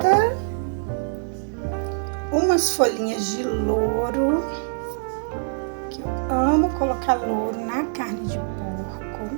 Umas folhinhas de louro, que eu amo colocar louro na carne de porco.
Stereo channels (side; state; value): left; silent; 63 dB below the other